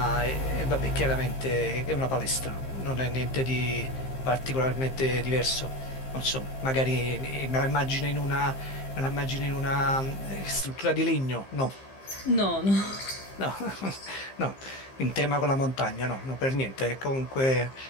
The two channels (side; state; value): right; late; 15 ms